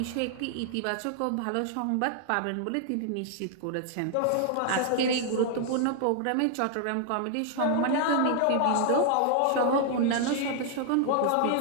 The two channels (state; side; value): different; both; correlation 0.00